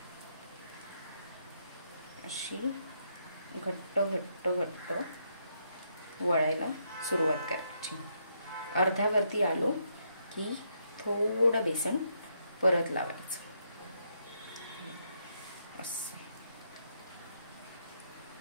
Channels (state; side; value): inverted; both; correlation -0.77